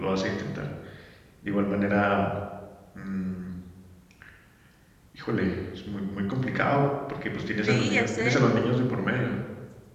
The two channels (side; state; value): both; identical; correlation 1.00